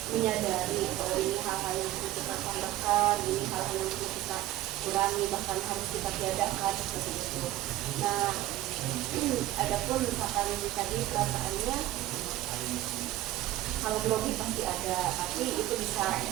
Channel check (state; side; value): quieter; left; 15.4 dB